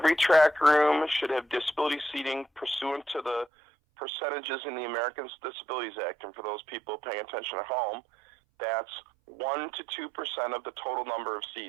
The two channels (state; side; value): drops out; left; at 3.5 s